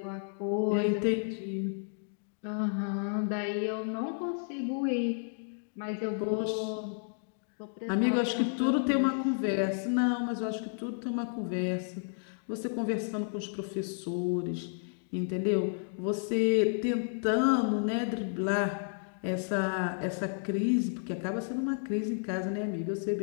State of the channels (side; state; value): right; silent; digital silence